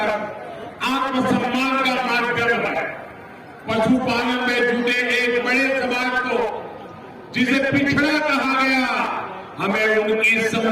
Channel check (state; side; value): identical; both; correlation 1.00